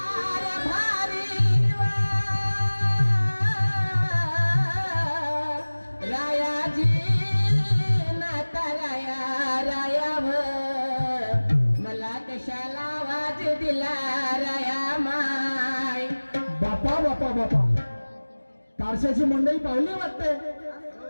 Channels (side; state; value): both; inverted; correlation -1.00